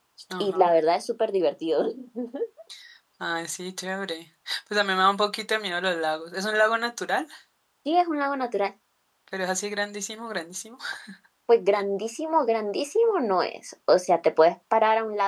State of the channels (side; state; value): both; identical; correlation 1.00